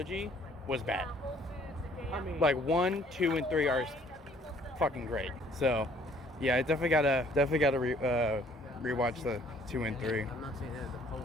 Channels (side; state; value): both; normal; correlation 0.59